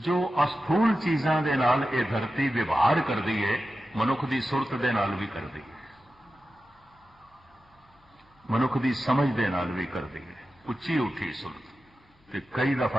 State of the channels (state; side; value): normal; both; correlation 0.93